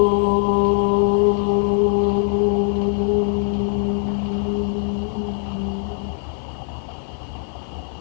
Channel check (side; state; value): right; silent; 59 dB below the other